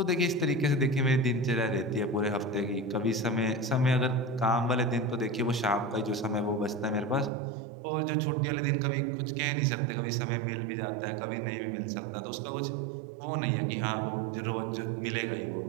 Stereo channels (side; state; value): left; drops out; at 7.3 s